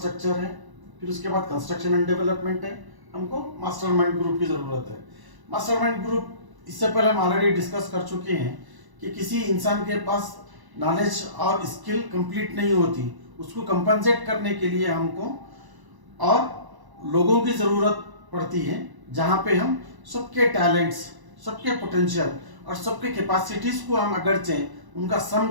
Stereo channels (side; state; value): left; late; 1.0 ms